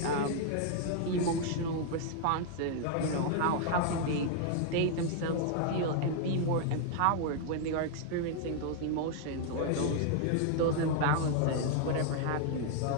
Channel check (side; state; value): both; different; correlation 0.00